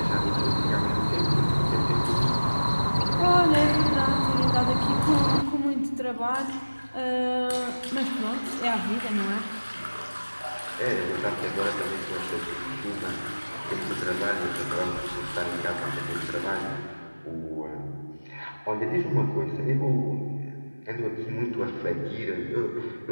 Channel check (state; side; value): inverted; both; correlation -1.00